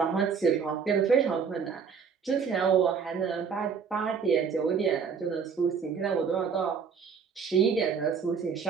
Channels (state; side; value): quieter; left; 6.2 dB